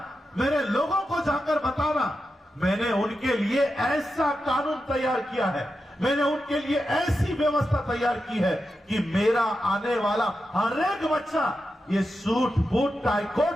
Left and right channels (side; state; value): both; normal; correlation 0.89